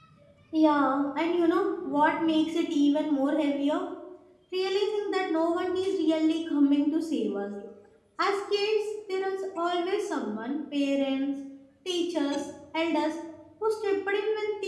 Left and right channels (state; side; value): identical; both; correlation 1.00